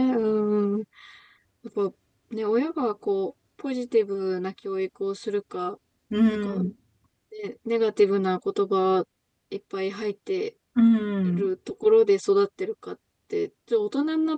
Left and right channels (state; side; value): identical; both; correlation 1.00